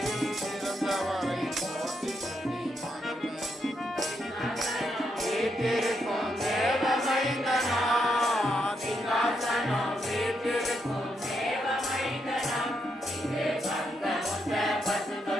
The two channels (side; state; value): both; normal; correlation 0.80